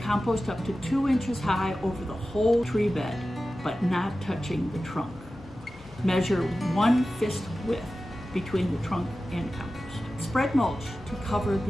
up to 2 inches high over the whole tree bed, but not touching the trunk. Measure 1 fist width between the trunk and compost. Spread mulch to cover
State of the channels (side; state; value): both; normal; correlation 0.94